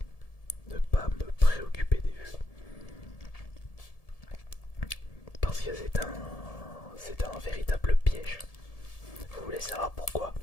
Ne pas me préoccuper des vues. Parce que c'est un véritable piège. Vous voulez savoir pourquoi?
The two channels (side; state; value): right; late; 1.7 ms